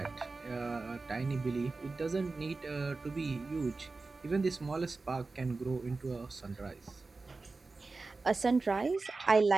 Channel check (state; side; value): quieter; left; 3.8 dB